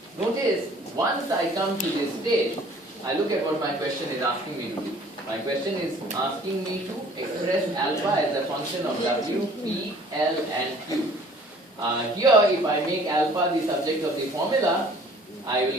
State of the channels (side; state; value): both; normal; correlation 0.53